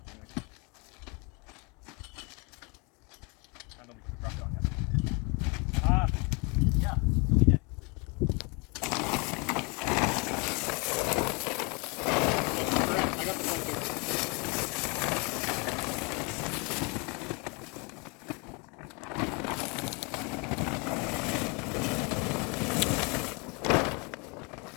Anyway. I know we can drop it on yet. Yeah, we did. I got the phone too.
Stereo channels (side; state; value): right; quieter; 31.0 dB